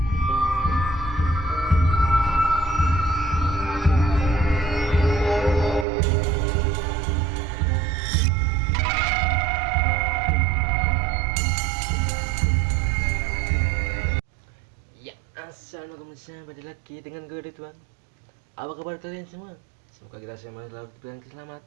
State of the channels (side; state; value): left; drops out; at 5.9 s